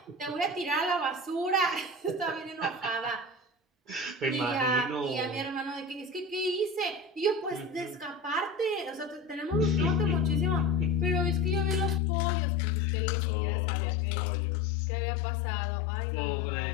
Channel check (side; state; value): right; drops out; at 12.0 s